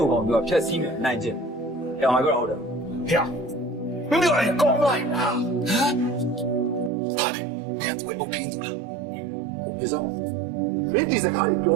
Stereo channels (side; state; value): left; drops out; at 6.9 s